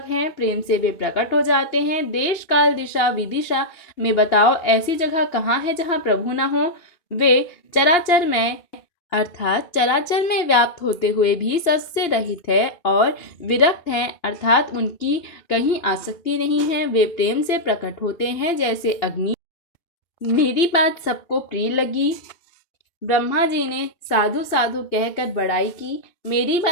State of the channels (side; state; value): right; late; 2.9 ms